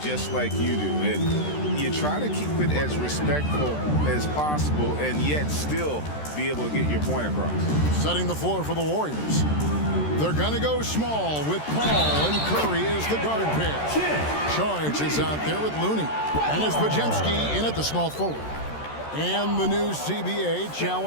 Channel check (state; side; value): late; right; 13 ms